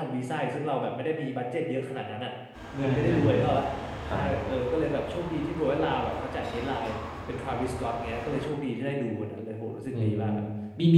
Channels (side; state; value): both; identical; correlation 1.00